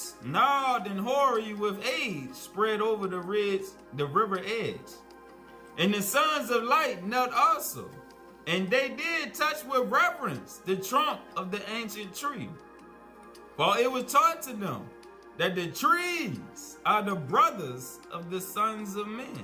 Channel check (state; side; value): identical; both; correlation 1.00